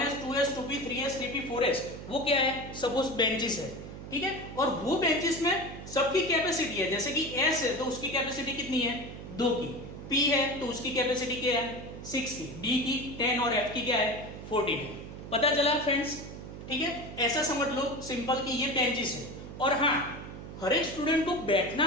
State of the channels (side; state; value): right; noise; hum, 11 dB below the sound